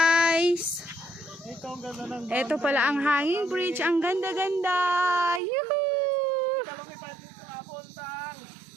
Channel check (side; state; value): left; drops out; at 5.4 s